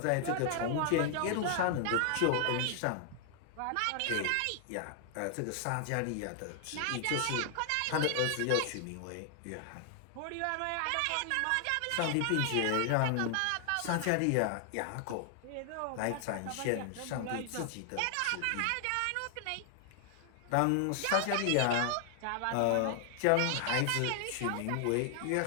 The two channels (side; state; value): both; different; correlation 0.00